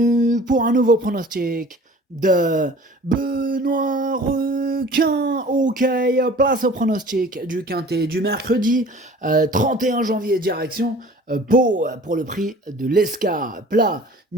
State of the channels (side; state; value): both; normal; correlation 0.46